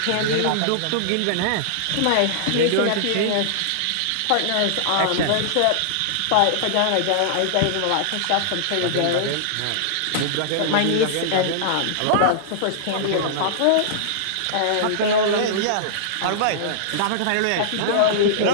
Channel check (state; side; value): different; both; correlation -0.02